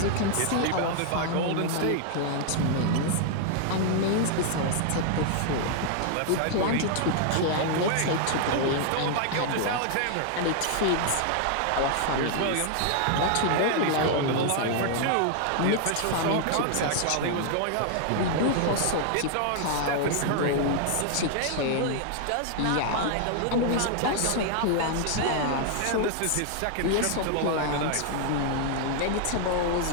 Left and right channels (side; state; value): both; different; correlation 0.00